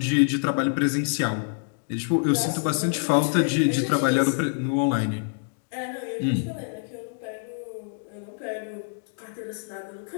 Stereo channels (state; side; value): silent; right; digital silence